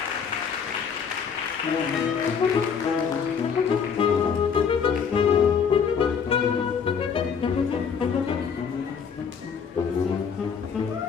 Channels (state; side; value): quieter; right; 6.6 dB